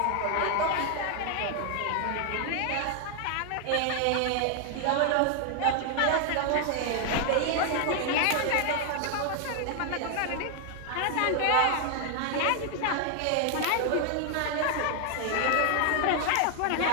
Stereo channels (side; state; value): both; different; correlation 0.00